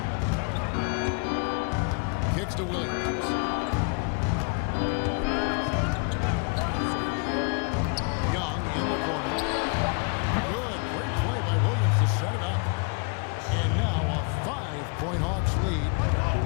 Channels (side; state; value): right; quieter; 34.2 dB